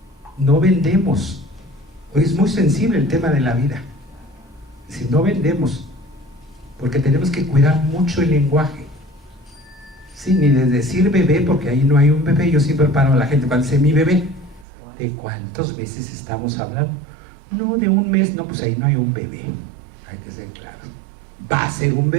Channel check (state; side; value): drops out; left; at 14.7 s